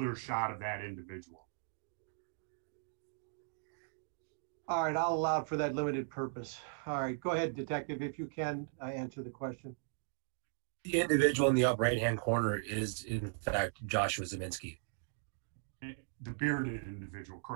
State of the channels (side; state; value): left; silent; digital silence